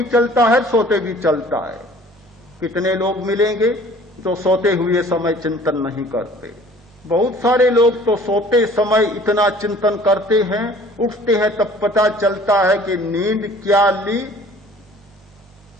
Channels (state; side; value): normal; both; correlation 0.51